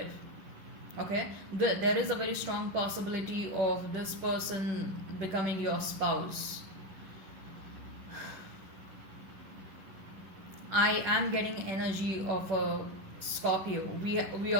okay. There is a very strong possibility of this person becoming your spouse. I am getting energy of a Scorpio. We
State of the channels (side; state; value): left; late; 11 ms